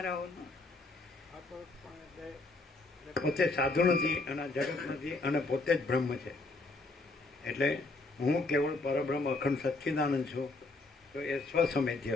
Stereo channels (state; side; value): quieter; right; 3.3 dB